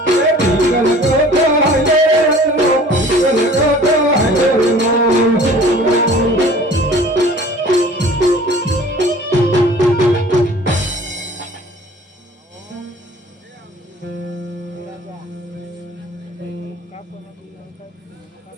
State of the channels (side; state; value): both; normal; correlation 0.48